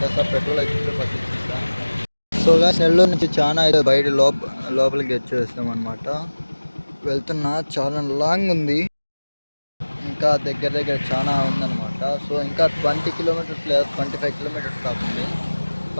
పెట్రోల్ అయితే పట్టించేస్తా. సో గాయ్స్ నెల్లూరు నుంచి చాలా అయితే బయట లోపలికి వచ్చేస్తాం అనమాట. వెళ్తున్నా, చాలా లాంగ్ ఉంది, ఇంకా దగ్గర దగ్గర చాలా ఉందన్నమాట. సో ఇంకా 20 కిలోమీటర్స్ లేదా 25 కిలోమీటర్స్ కాకుండా,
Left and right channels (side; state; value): both; inverted; correlation -1.00